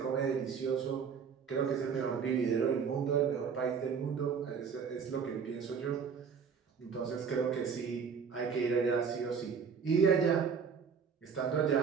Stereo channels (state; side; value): quieter; left; 6.3 dB